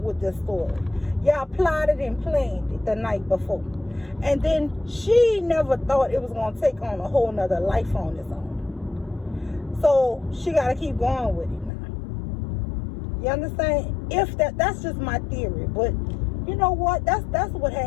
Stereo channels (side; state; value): right; drops out; at 11.7 s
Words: with this story. Y'all plotted and planned it the night before. And then she never thought it was gonna take on a whole nother life on its own. So she gotta keep going with it now. You understand? If that's just my theory, but you know what? That's what